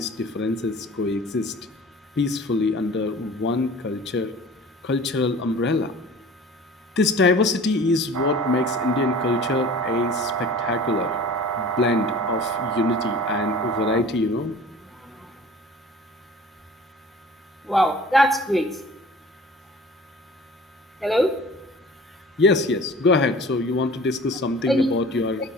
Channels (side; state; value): both; normal; correlation 0.44